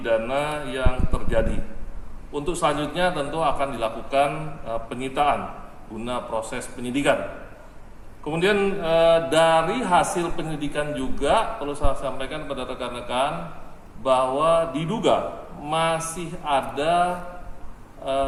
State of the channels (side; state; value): both; identical; correlation 1.00